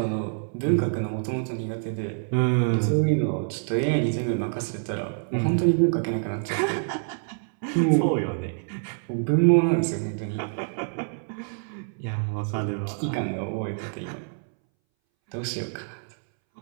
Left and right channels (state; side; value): silent; left; 61 dB below the other